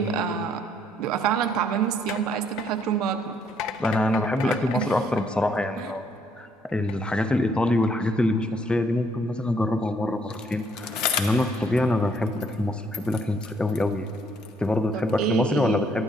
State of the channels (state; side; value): normal; both; correlation 0.68